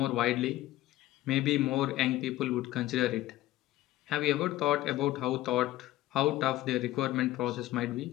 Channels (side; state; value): right; quieter; 15.5 dB